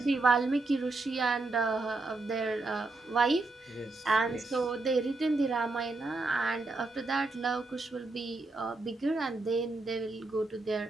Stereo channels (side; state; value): left; quieter; 3.3 dB